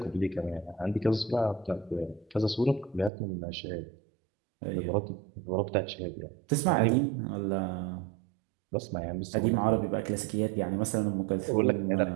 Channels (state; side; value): drops out; left; at 3.1 s